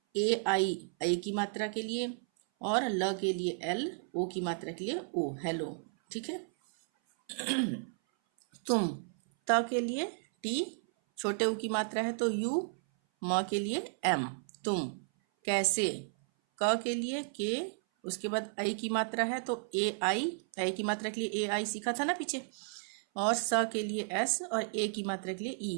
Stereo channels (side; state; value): left; silent; 56 dB below the other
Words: AI आई की मात्रा के लिए, और ल के लिए L, O की मात्रा के लिए O, हेलो, ठीक है। तुम, त के लिए T, छोटे U की मात्रा है तो U, म के लिए M, तुम। कैसे, क के लिए K, उसके बाद आई की मात्रा है तो AI, आई की मात्रा के लिए AI सीखा था ना पीछे, और स के लिए S और A की मात्रा के लिए